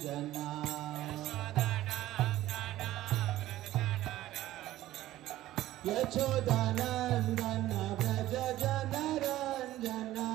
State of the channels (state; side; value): quieter; left; 14.9 dB